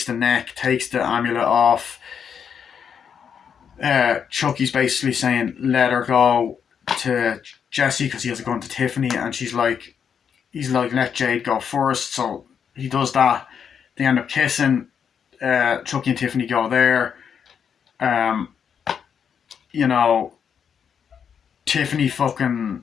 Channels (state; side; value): quieter; right; 7.4 dB